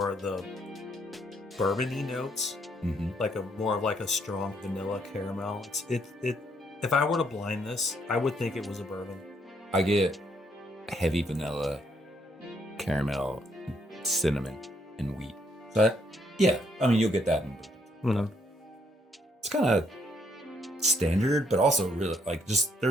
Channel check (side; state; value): both; normal; correlation 0.71